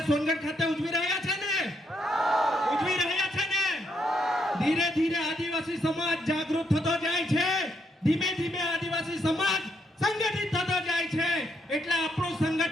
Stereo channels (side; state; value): both; normal; correlation 0.77